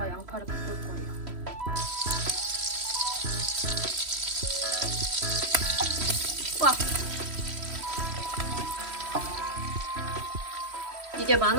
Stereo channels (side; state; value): left; late; 3.1 ms